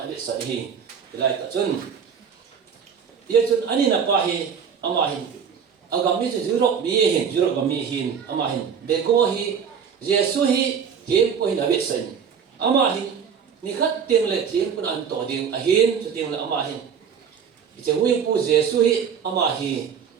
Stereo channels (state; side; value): quieter; left; 7.1 dB